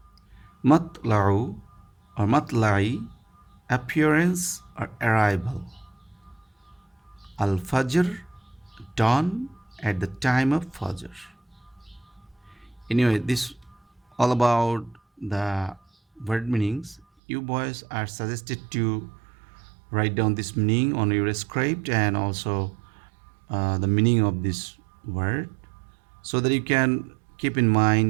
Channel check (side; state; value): left; drops out; at 17.1 s